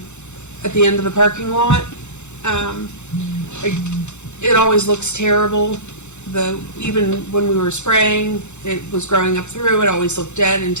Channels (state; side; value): late; right; 0.83 ms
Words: end of the parking lot. It always looks terrible. Even when we were spraying, it was growing up through. It always looked dead and